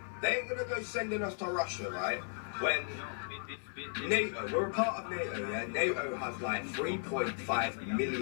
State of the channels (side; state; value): right; silent; 54 dB below the other